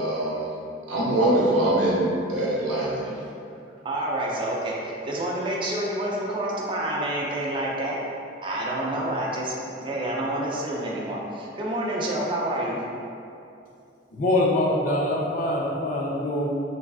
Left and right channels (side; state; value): both; normal; correlation 0.25